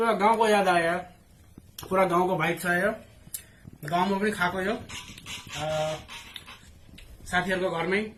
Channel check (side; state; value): both; identical; correlation 1.00